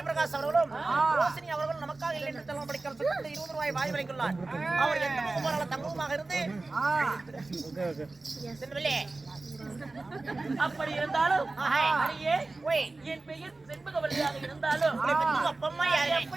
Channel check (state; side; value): quieter; left; 3.3 dB